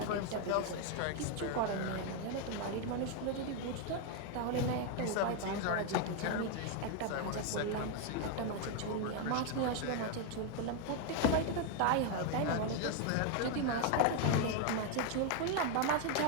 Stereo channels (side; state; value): both; different; correlation 0.00